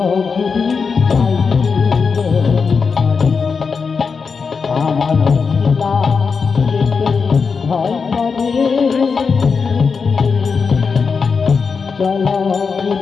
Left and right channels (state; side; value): quieter; right; 5.3 dB